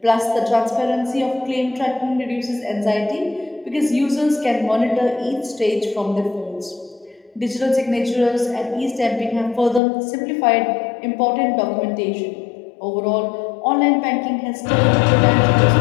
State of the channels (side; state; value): right; drops out; at 9.8 s